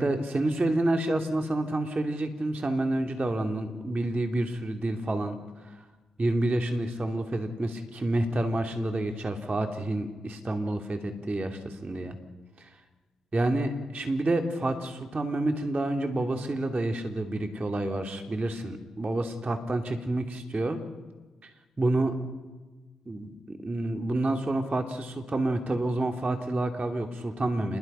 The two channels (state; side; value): normal; both; correlation 0.92